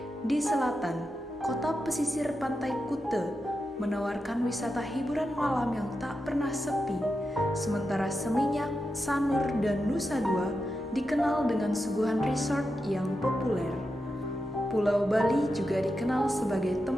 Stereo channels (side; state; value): both; normal; correlation 0.88